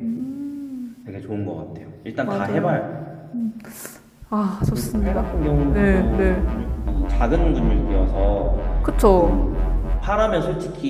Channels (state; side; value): identical; both; correlation 1.00